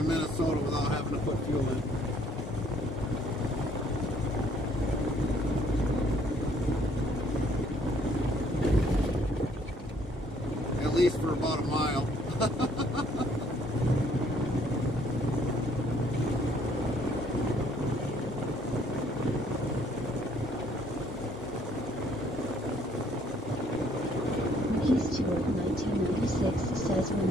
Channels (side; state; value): both; normal; correlation 0.63